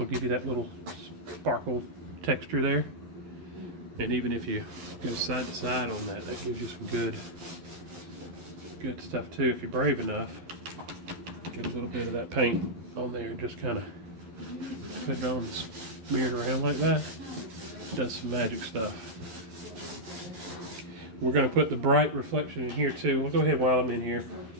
give you that little sparkle texture there. And even if you go side to side on that, that gives you some good stuff too. If you're brave enough, get a little bit of that paint on there and just kind of put it on and smear it around like that. It does some magic stuff. We're going to put the bright reflection in here too. We'll go ahead while I'm in here.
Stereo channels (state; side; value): late; left; 11 ms